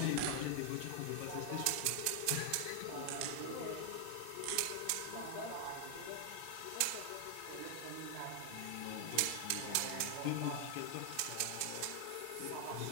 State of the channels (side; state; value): both; different; correlation 0.00